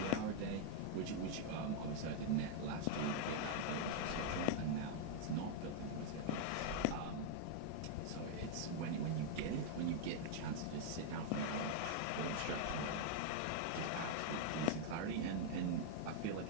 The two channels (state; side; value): different; both; correlation -0.01